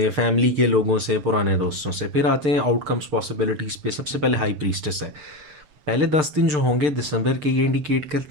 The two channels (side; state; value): left; late; 6.7 ms